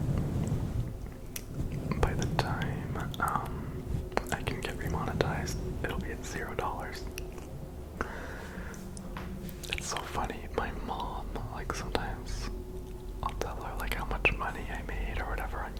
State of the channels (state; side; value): identical; both; correlation 1.00